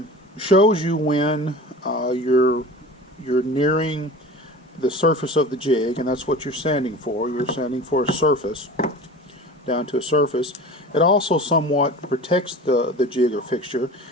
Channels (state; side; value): normal; both; correlation 0.36